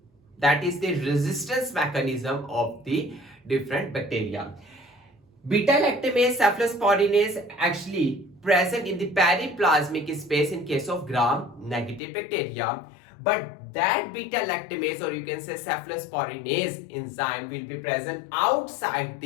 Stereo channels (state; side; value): drops out; right; at 12.0 s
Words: That is the resistance mechanism of the different bacteria. Beta-lactamase cephalosporinase actually present in the periplasmic space in case of gram-negative bacteria, but that beta-lactamase, or you can say cephalosporinase enzyme, will be present outside